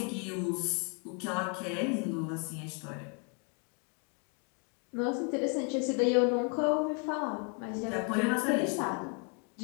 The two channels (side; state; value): right; quieter; 36.7 dB